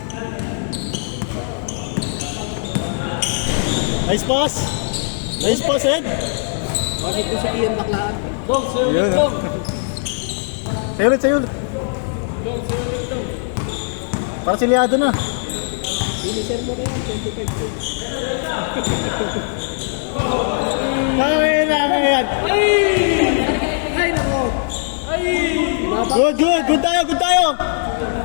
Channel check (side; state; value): right; silent; digital silence